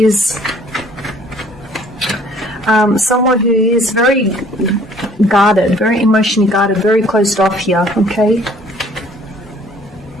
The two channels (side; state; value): both; normal; correlation 0.57